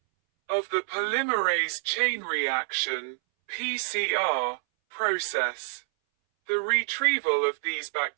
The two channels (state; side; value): silent; left; 60 dB below the other